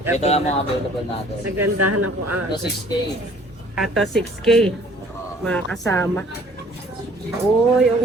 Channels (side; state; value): both; normal; correlation 0.55